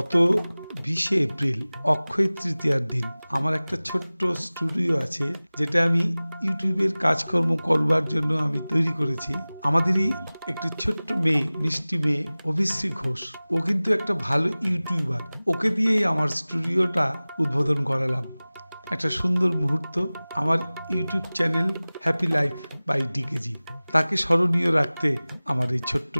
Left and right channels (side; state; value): both; inverted; correlation -0.99